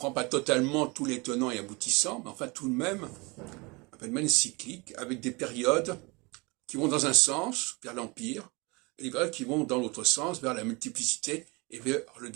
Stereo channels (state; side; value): quieter; left; 26.9 dB